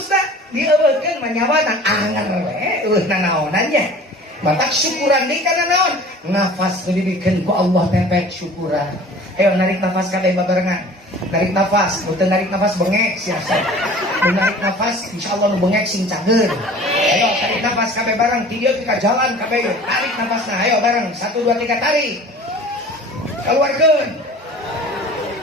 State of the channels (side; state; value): both; normal; correlation 0.44